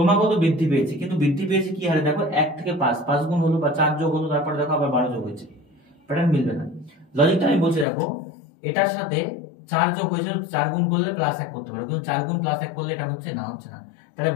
বৃদ্ধি পেয়েছে, কিন্তু বৃদ্ধি পেয়েছে কি হারে দেখো, 1 থেকে 5, 5 গুণ হলো বা 4 যোগ হলো, তারপরে দেখো আবার 12 যোগ হয়েছে, প্যাটার্ন মিলবে না। লজিকটা আমি বলছি দেখো, এটার সাথে 4 যোগ হয়েছে, 4 গুণ করলে প্লাস 1 করতে পারো, কিন্তু 4 গুণ প্লাস 1 করলে এটা হচ্ছে না, হচ্ছে না। তাহলে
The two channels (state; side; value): drops out; right; at 7.9 s